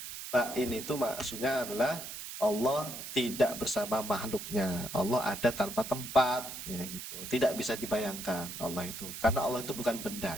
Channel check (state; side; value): noise; right; hiss, 9 dB below the sound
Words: Ba'in itu maksudnya adalah Allah tidak bersama makhluknya. Allah ada tanpa tempat ya gitu. Tidak bisa dibayangkan Allah itu. Karena Allah itu bukan benda